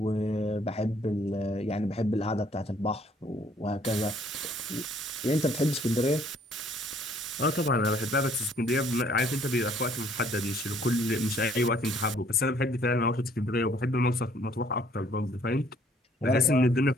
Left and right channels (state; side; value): normal; both; correlation 0.61